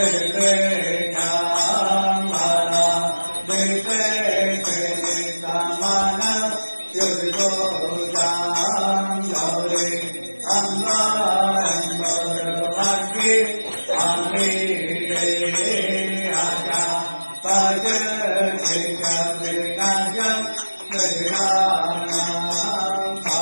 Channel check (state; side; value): inverted; both; correlation -1.00